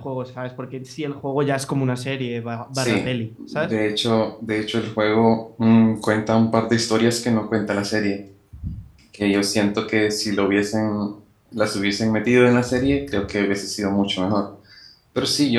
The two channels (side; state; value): both; identical; correlation 1.00